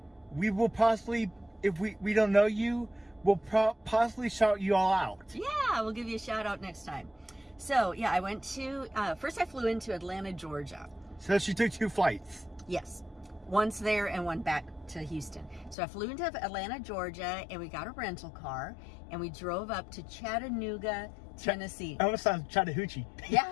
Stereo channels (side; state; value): right; drops out; at 15.8 s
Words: we will possibly, if we don't know you, we'll possibly shout you all out. Yeah, we'll give you a shout out next time. So, yeah, I went to, first I flew into Atlanta, Georgia. So she took 2 flights. Yes. Once there and one back to Houston. So I flew into Atlanta, Georgia, and we got a rental car, and we drove up to Chattanooga, Tennessee. That almost sounds Chattahoochee.